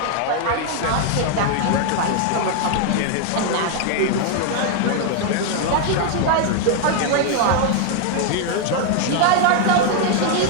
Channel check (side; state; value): both; different; correlation 0.00